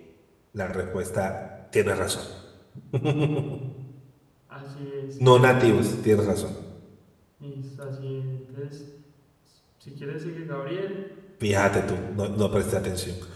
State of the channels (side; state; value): both; identical; correlation 1.00